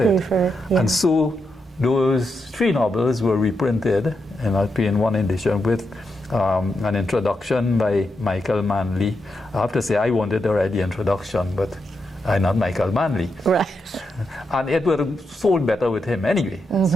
it. Yeah. And so those 3 novels were reprinted in a 3-in-1 edition with an introduction by Michael Manley. I have to say, I wanted to write the introduction, but I'm not Michael Manley. Right. And it would have sold better with him anyway,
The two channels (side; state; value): both; normal; correlation 0.84